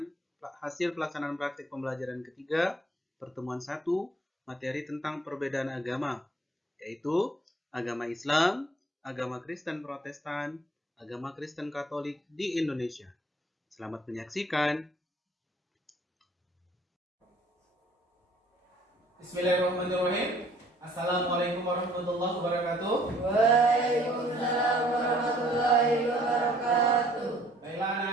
hasil pelaksanaan praktik pembelajaran ketiga pertemuan 1 materi tentang perbedaan agama, yaitu agama Islam, agama Kristen Protestan, agama Kristen Katolik di Indonesia. Selamat menyaksikan. Bismillahirrahmanirrahim. Assalamualaikum warahmatullahi wabarakatuh. Waalaikumsalam warahmatullahi wabarakatuh. Baiklah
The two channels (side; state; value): both; normal; correlation 0.59